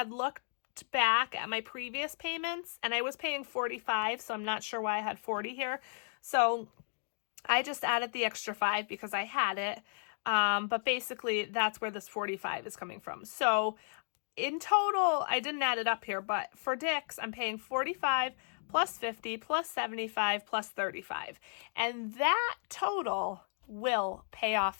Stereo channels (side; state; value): right; silent; digital silence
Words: looked looked back at my previous payments, and I was paying $45, so I'm not sure why I had $40 here. So I just added the extra $5 because I had it. But basically that's where this $45 is coming from. So in total, I didn't add it up here, but for Dick's, I'm paying $45 plus $50 plus $75 plus $35. And that total will pay off